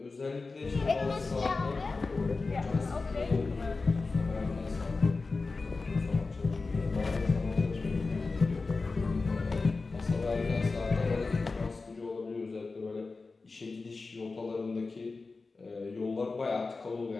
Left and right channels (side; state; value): right; quieter; 3.9 dB